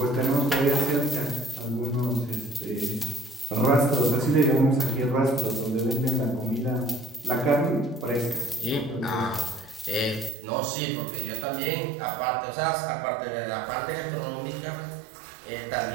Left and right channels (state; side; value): drops out; left; at 10.3 s